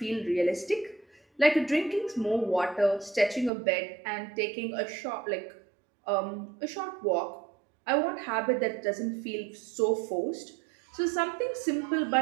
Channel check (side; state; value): left; drops out; at 3.5 s